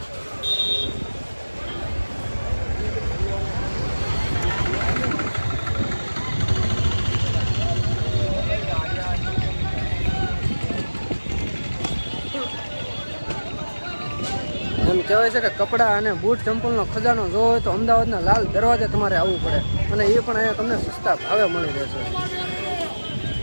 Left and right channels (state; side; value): inverted; both; correlation -1.00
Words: એમ કહેવાય છે કે કપડાં અને બૂટ ચંપલનો ખજાનો જોવો હોય તો અમદાવાદના લાલ દરવાજે તમારે આવવું પડે અને એ પણ અહીંયા તમને સસ્તા ભાવે મળી રહેશે.